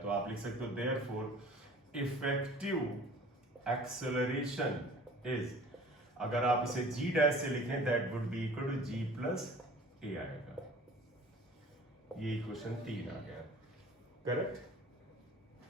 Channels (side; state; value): both; normal; correlation 0.47